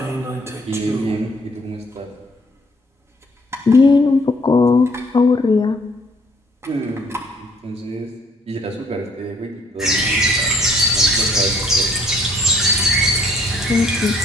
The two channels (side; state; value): both; normal; correlation 0.63